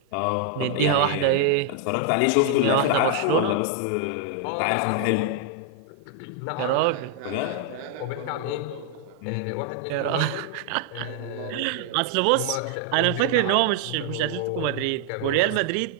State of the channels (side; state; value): both; different; correlation 0.00